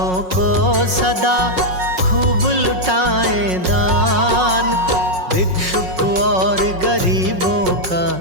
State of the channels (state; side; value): late; left; 5.5 ms